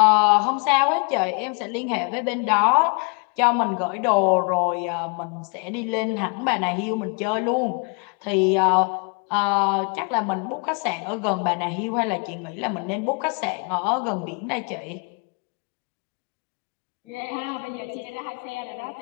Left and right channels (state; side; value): quieter; right; 34.9 dB